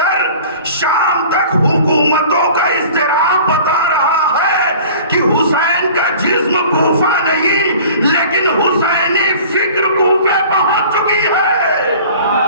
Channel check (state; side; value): inverted; both; correlation -0.44